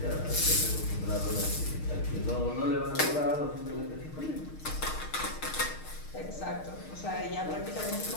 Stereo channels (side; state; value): right; late; 6.5 ms